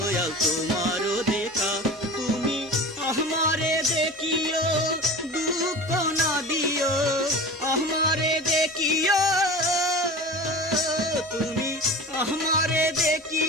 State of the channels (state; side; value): normal; both; correlation 0.35